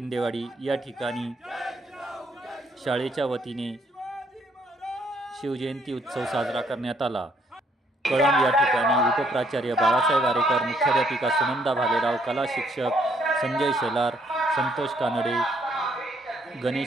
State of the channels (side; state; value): both; normal; correlation 0.69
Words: या ठिकाणी शाळेच्या वतीने शिवजयंती उत्सव साजरा करण्यात आला। कळंब या ठिकाणी उपप्राचार्य बाळासाहेब आरेकर, मुख्याध्यापिका सुनंदा भालेराव, कला शिक्षक संजय शेलार, संतोष कानडे,